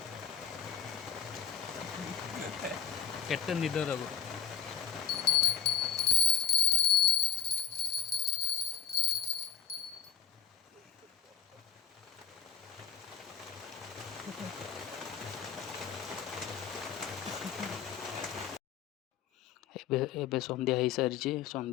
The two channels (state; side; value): quieter; right; 7.8 dB